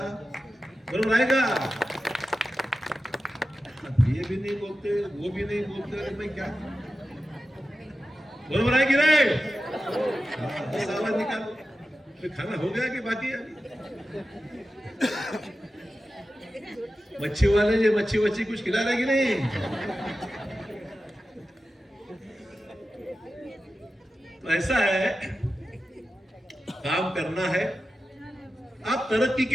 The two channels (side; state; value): both; normal; correlation 0.93